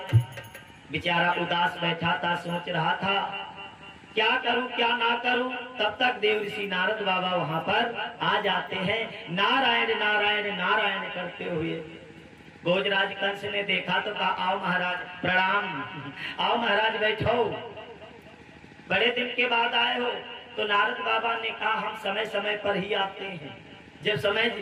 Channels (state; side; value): identical; both; correlation 1.00